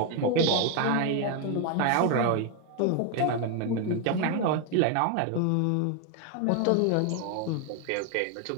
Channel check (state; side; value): different; both; correlation 0.01